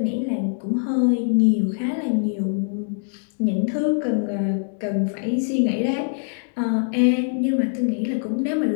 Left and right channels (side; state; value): right; silent; digital silence